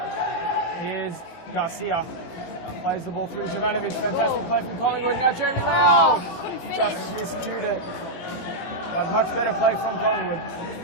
Here's Garcia, plays the ball through to Jovanovic. Fantastic play from Collingwood. Now Jeremy Lau just miscued it, but much better play from Collingwood.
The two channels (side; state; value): right; late; 18 ms